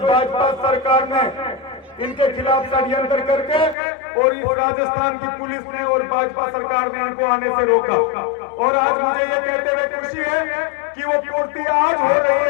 सरकार ने इनके खिलाफ षड्यंत्र करके और इस राजस्थान की पुलिस ने और भाजपा सरकार ने इनको आने से रोका। और आज मुझे ये कहते हुए खुशी है कि वो पूर्ति आज हो रही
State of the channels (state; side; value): drops out; right; at 3.8 s